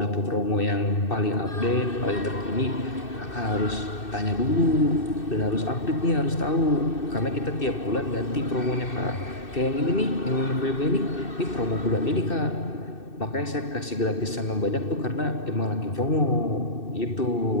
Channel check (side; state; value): right; late; 2.6 ms